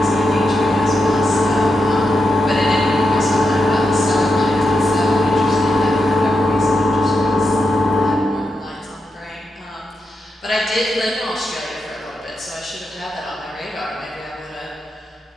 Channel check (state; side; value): normal; both; correlation 0.86